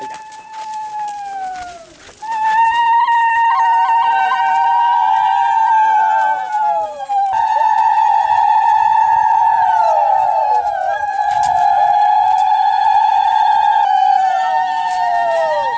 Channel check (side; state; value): both; identical; correlation 1.00